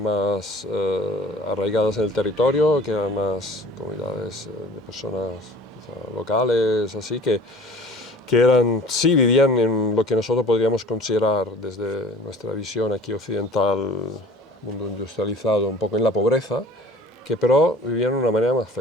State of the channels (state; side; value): normal; both; correlation 0.46